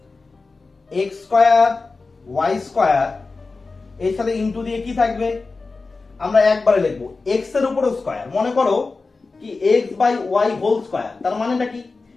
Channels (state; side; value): quieter; right; 3.9 dB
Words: x স্কয়ার y স্কয়ার এর সাথে ইনটু দিয়ে কি থাকবে আমরা একবারে লিখব x এর উপর স্কয়ার, মনে করো কি x by y whole square, তার মানেটা কি